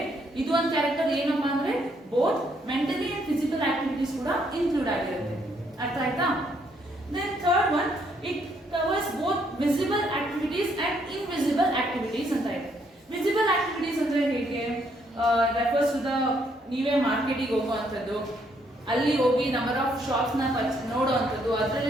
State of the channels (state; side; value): normal; both; correlation 0.71